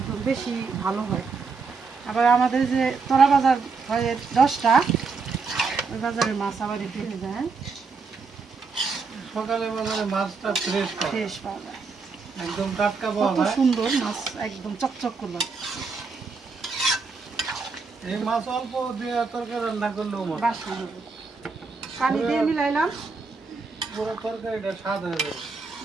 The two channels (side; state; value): left; quieter; 4.7 dB